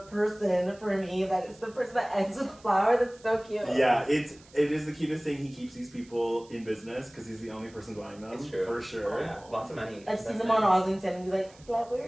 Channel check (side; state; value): right; noise; hiss, 26 dB below the sound